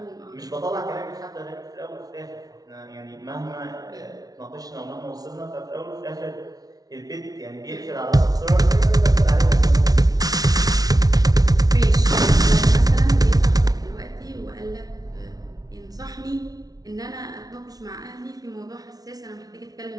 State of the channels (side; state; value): left; late; 0.18 ms